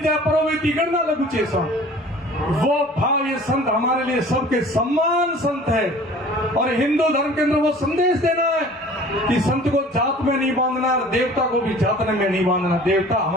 परोवेती करना लगू चेसा। वो भाव ये संत हमारे लिए सबके सम्मान संत है। और हिंदू धर्म के अंदर वो संदेश देना है कि संत को जात में नहीं बांधना, देवता को भी जात में नहीं बांधना। देवता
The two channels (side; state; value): both; normal; correlation 0.47